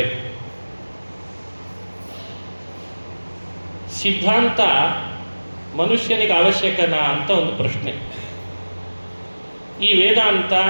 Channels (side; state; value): both; inverted; correlation -1.00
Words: ಸಿದ್ಧಾಂತ ಮನುಷ್ಯನಿಗೆ ಅವಶ್ಯಕನಾ ಅಂತ ಒಂದು ಪ್ರಶ್ನೆ. ಈ ವೇದಾಂತ,